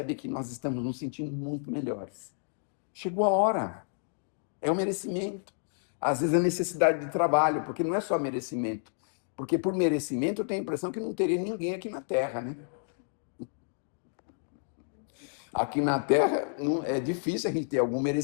que nós estamos nos sentindo muito melhores. Chegou a hora, é o merecimento. Às vezes a necessidade de trabalho, porque não é só merecimento. Porque por merecimento eu tenho a impressão que não teria ninguém aqui na Terra, né? Aqui na Terra é difícil a gente ter algum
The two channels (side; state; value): right; silent; digital silence